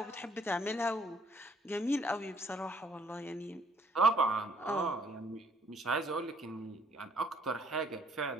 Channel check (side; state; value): both; normal; correlation 0.64